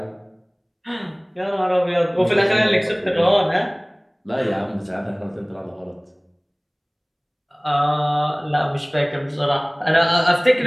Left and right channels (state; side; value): identical; both; correlation 1.00